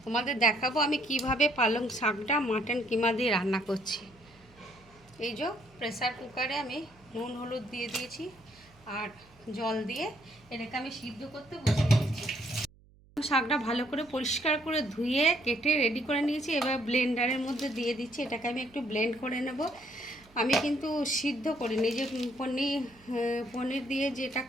তোমাদের দেখাবো আমি কিভাবে পালং শাকটা মাটন কিমা দিয়ে রান্না করছি। এই যে প্রেসার কুকারে আমি নুন হলুদ দিয়ে দিয়েছি আর জল দিয়ে এটাকে আমি সিদ্ধ করতে বসিয়ে দিয়েছি। শাকটা ভালো করে পরিষ্কার করে ধুয়ে কেটে রেডি করে নিয়েছি। এবার ব্লেন্ডারের মধ্যে দিয়ে দিচ্ছি। এটাকে আমি একটু ব্লেন্ড করে নেব। আমি কিন্তু সিদ্ধ করিনি, যে পনির দিয়ে যেটা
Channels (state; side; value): noise; right; hum, 28 dB below the sound